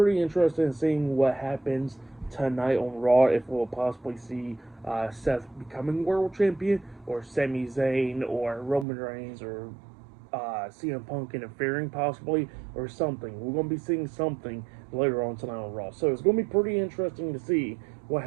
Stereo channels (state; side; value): drops out; left; at 8.8 s